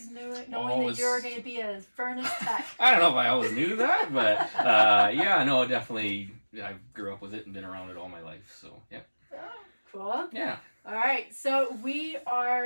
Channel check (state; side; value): inverted; both; correlation -1.00